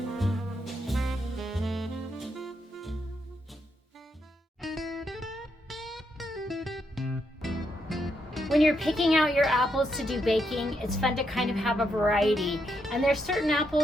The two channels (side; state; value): both; normal; correlation 0.80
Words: When you're picking out your apples to do baking, it's fun to kind of have a variety. And there's certain